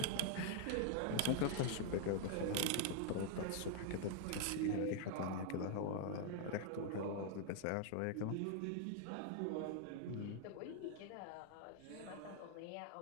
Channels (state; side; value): different; both; correlation 0.00